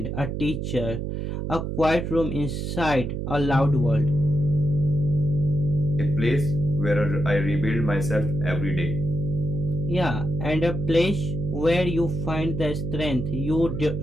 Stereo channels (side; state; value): right; noise; hum, 3 dB below the sound